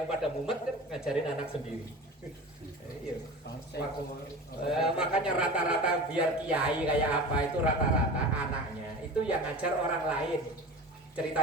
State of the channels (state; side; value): normal; both; correlation 0.34